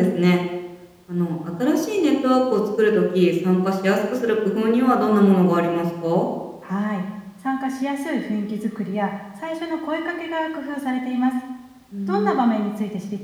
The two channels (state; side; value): identical; both; correlation 1.00